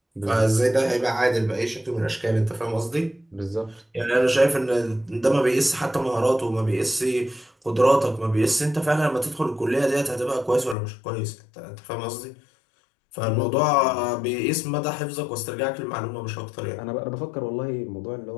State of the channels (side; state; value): right; drops out; at 10.8 s